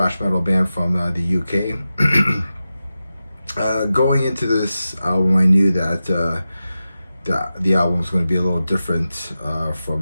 metal band from the UK. Going into this album, I knew that the album was going to be a little different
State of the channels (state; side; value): inverted; both; correlation -0.93